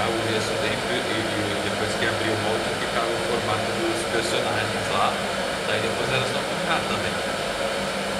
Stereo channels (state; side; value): identical; both; correlation 1.00